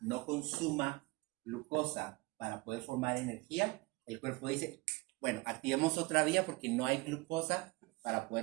no consuma glucosa para poder formar energía, el cuerpo dice, bueno, activemos otra vía porque no hay glucosa para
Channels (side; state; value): left; quieter; 23.3 dB